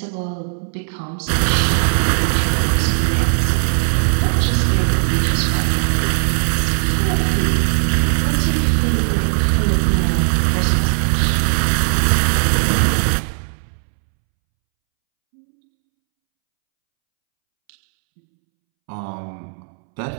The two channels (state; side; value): silent; left; 68 dB below the other